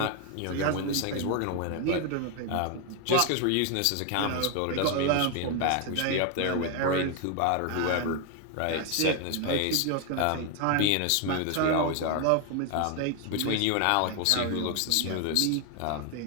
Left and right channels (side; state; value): both; different; correlation 0.01